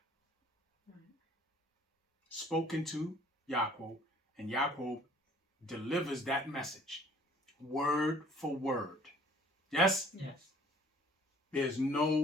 Spoken to Yaakov, and Yaakov delivers that message word for word. Yes? Yes. There's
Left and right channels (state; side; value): normal; both; correlation 0.55